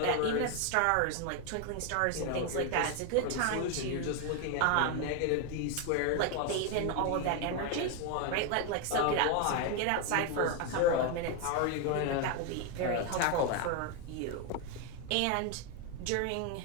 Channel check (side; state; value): both; different; correlation 0.01